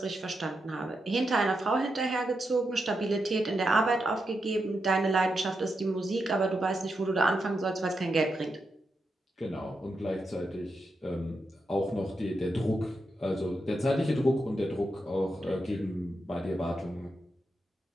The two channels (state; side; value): normal; both; correlation 0.85